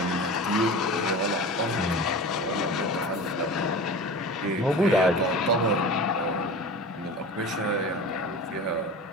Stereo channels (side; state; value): both; normal; correlation 0.34